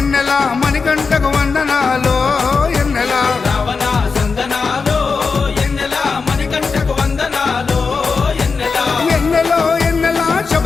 మణికంఠకు వందనాలో ఎన్నెల రావణ సందనాలో ఎన్నెల మణికంఠకు వందనాలో ఎన్నెల ఎన్నెలో ఎన్నెల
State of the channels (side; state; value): right; quieter; 4.9 dB